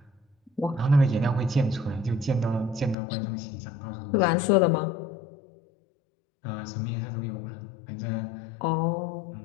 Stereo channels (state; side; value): drops out; right; at 3.0 s